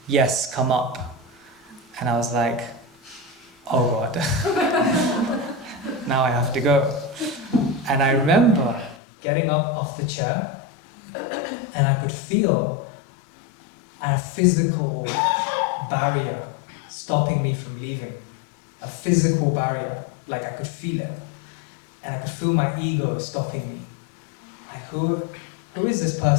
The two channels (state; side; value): drops out; right; at 9.0 s